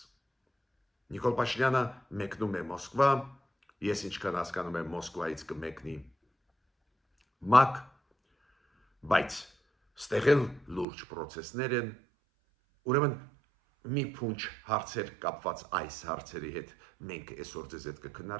Նիկոլ Փաշինյանը մեկնում է Մոսկվա, ես ինչքան հասկանում եմ Մոսկվայից կմեկնի ՄԱԿ, բայց ստեղ էլ լուրջ պրոցեսներ են, ուրեմն մի փունջ հարցեր կապված այս հարցերի հետ մենք այսօր ձեզ հետ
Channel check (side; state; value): left; drops out; at 10.9 s